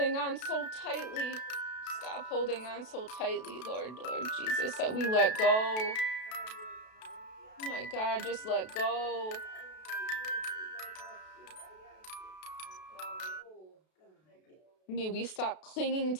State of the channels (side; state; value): right; late; 32 ms